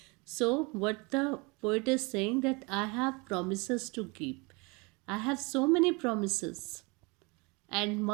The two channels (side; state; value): left; quieter; 28.2 dB